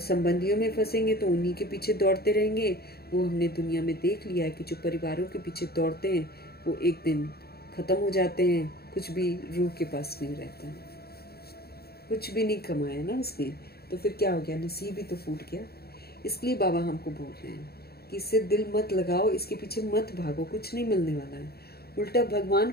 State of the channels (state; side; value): late; right; 0.46 ms